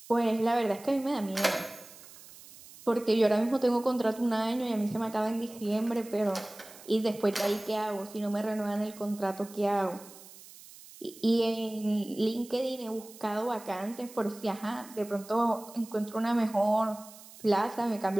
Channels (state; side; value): noise; right; hiss, 19 dB below the sound